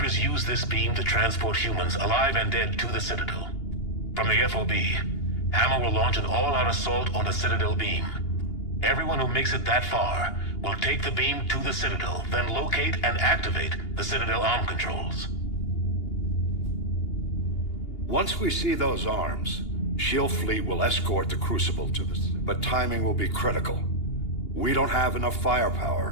use this beam to transport humans, alive and dead, to the Citadel. From the FOB, Hammer will launch an all-out assault on the Citadel beam. Everyone who makes it that far will take the beam to the Citadel, then locate and activate the Citadel arm controls. Once we see those arms, SHIELD fleet will escort the Crucible to the... But timing will be critical. We don't have enough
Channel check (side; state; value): right; late; 2.8 ms